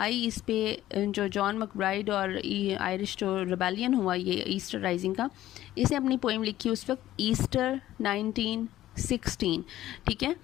इस पे जो जॉन मैकब्राइड और आयरिश जो रिबेलियन हुआ ये ईस्टर राइजिंग का, इसे अपनी पोइम लिखी उस वक्त ईस्टर 1916, ठीक है।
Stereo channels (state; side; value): quieter; right; 14.0 dB